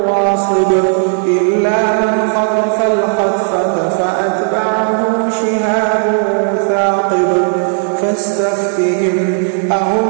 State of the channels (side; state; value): left; silent; 56 dB below the other